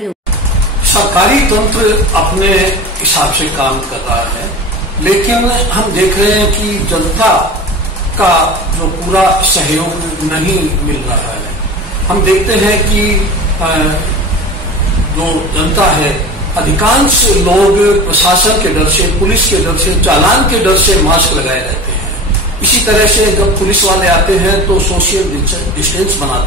सरकारी तंत्र अपने हिसाब से काम कर रहा है, लेकिन हम देख रहे हैं कि जनता का जो पूरा सहयोग नहीं मिल रहा है। हम देखते हैं कि जो जनता है, अधिकांश लोग प्रशासन के डर से, पुलिस के डर से, चालान के डर से मास्क लगाए रहते हैं। इसी तरह से जब पुलिस वाले आते हैं तो सोशल डिस्टेंस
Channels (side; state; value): both; normal; correlation 0.34